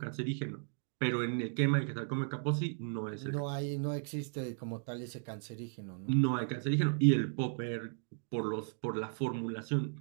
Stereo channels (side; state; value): left; silent; digital silence